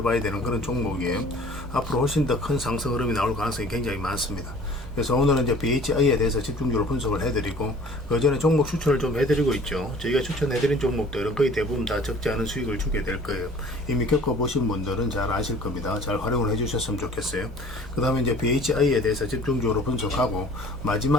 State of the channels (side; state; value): both; normal; correlation 0.49